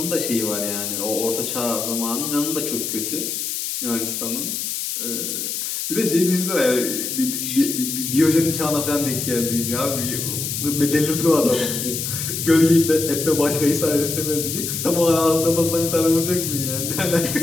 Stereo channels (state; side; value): noise; left; hiss, 3 dB below the sound